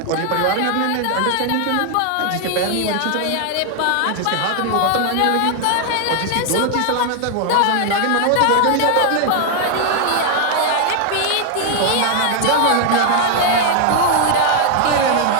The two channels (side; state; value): both; different; correlation 0.00